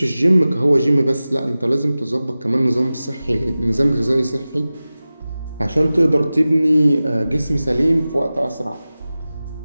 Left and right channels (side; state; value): both; inverted; correlation -0.96